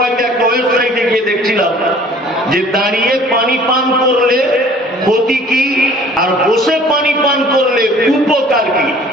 একটা ওয়েবসাইটে গিয়ে দেখছিলাম যে দাঁড়িয়ে পানি পান করলে ক্ষতি কি আর বসে পানি পান করলে উপকার কি।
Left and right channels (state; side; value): normal; both; correlation 0.51